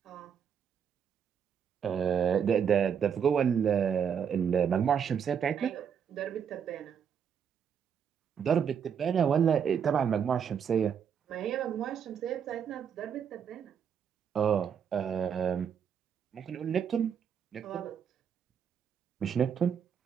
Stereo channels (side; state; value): left; quieter; 7.6 dB